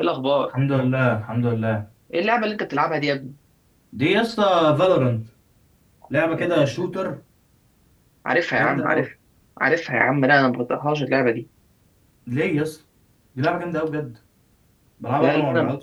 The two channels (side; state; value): both; identical; correlation 1.00